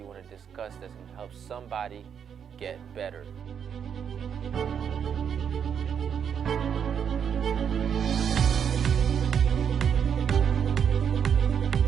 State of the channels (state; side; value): quieter; left; 7.7 dB